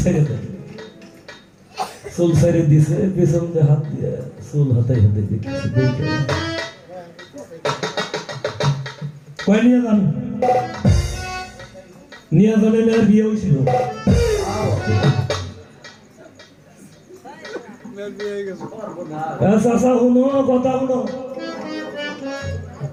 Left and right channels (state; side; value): identical; both; correlation 1.00